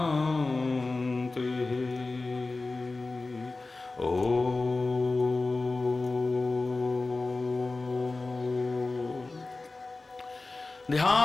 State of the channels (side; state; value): right; quieter; 3.4 dB